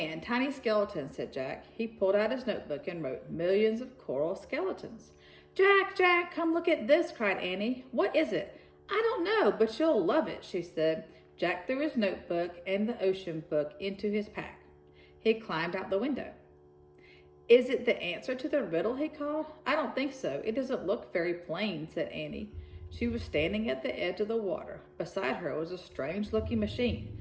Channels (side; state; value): both; identical; correlation 1.00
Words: tiny skeletons, said Jack. He pulled out his notebook and wrote millions of coral skeletons. Jack, come look at this, cried Annie. What is it? I don't know, but you'll love it, she said. Jack threw his notebook and the ocean book into his pack. He climbed out the window. Is it the answer to the riddle, he called. I don't think so. It doesn't look very plain, said Annie. She was standing at the edge of the water. Beside her was a strange-looking